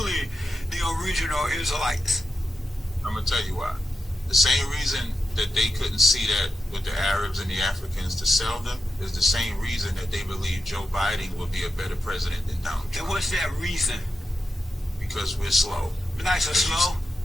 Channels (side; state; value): both; normal; correlation 0.87